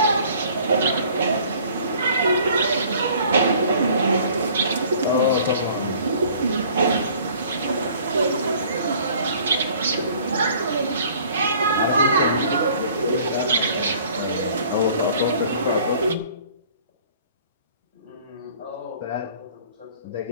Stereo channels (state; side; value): inverted; both; correlation -0.53